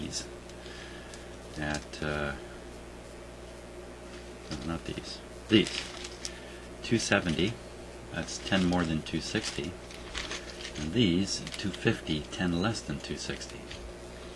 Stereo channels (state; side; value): identical; both; correlation 1.00